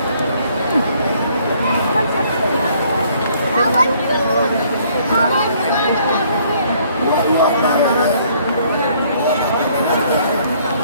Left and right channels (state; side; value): inverted; both; correlation -0.63